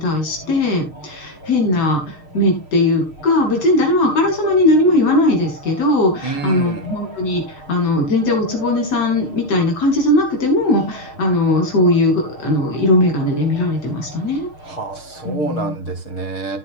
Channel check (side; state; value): right; late; 6.5 ms